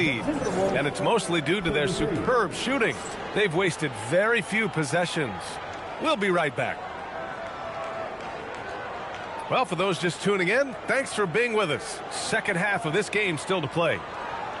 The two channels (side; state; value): both; identical; correlation 1.00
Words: And it's mostly due to their superb shooting. They've wasted very few possessions. We'll be right back. Well, for those just tuning in, thanks for being with us. Second half of this game still to play.